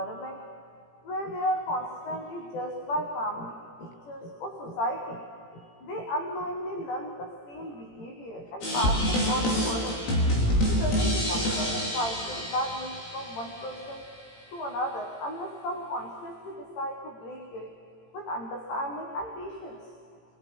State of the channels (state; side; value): late; right; 18 ms